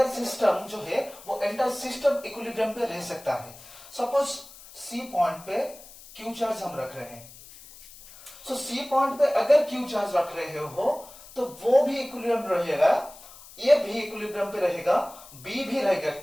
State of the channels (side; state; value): left; noise; hiss, 19 dB below the sound